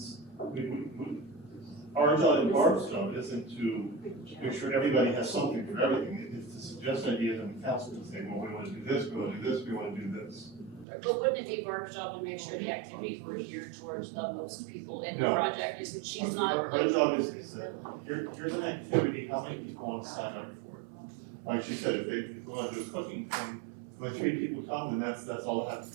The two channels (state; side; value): drops out; left; at 10.9 s